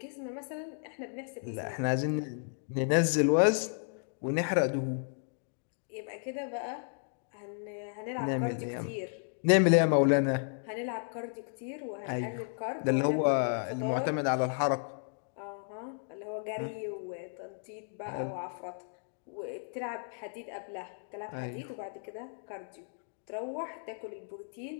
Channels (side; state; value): right; silent; digital silence